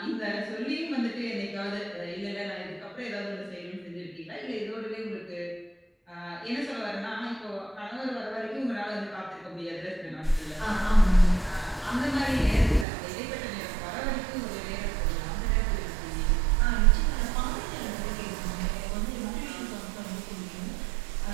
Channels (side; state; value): left; drops out; at 12.9 s